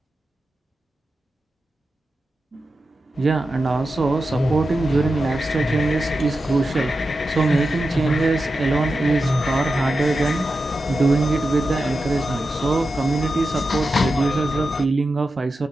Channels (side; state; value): both; normal; correlation 0.90